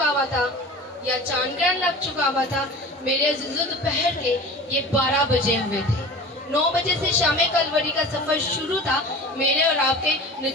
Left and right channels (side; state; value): both; normal; correlation 0.37